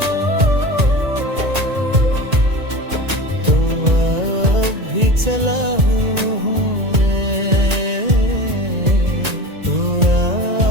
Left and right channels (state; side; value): late; left; 1.9 ms